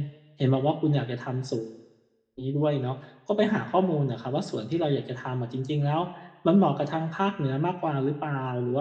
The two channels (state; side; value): identical; both; correlation 1.00